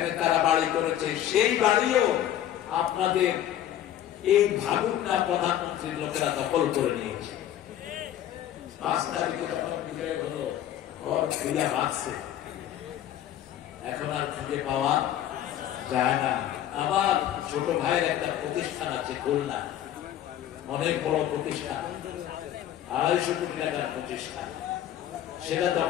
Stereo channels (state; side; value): quieter; right; 11.6 dB